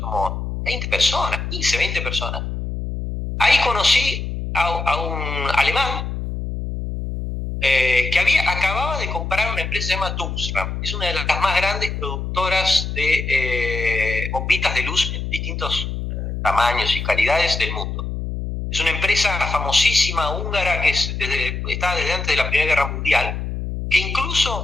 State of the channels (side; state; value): left; noise; hum, 4 dB below the sound